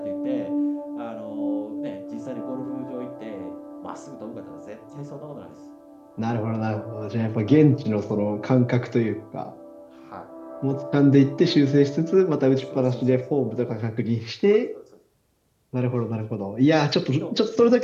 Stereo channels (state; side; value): identical; both; correlation 1.00